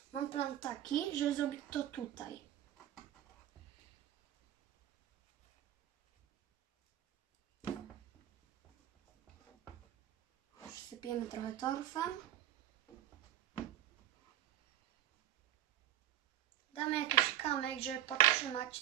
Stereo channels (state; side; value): quieter; left; 12.3 dB